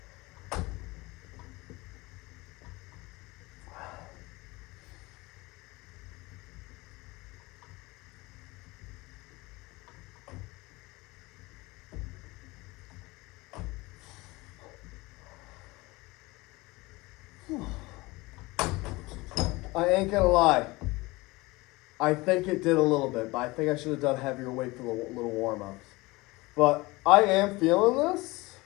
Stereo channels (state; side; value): quieter; right; 22.4 dB